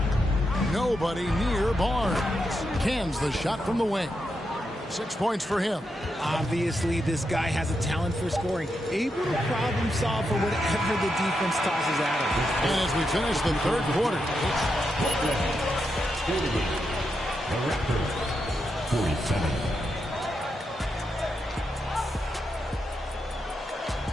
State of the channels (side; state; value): both; normal; correlation 0.84